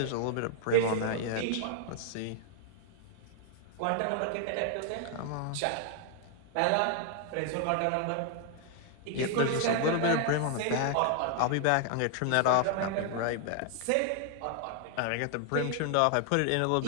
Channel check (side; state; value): both; different; correlation 0.00